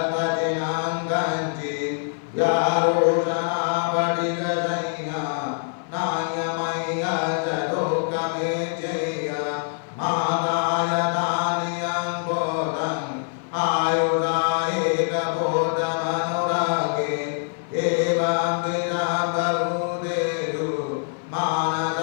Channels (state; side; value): silent; right; 56 dB below the other